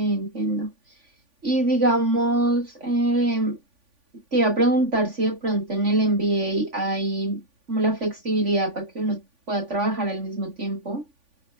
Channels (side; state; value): left; late; 3.5 ms